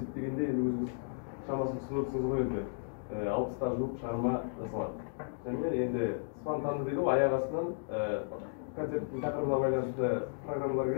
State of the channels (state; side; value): silent; right; digital silence